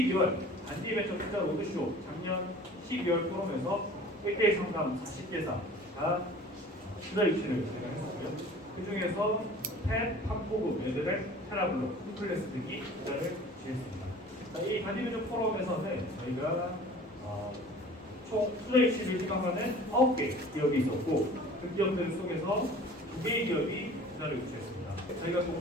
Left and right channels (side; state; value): both; normal; correlation 0.45